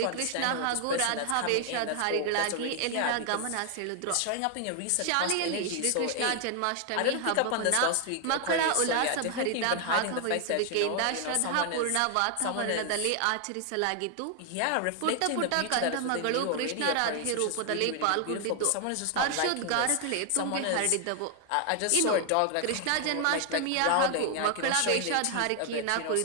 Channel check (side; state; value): both; different; correlation 0.00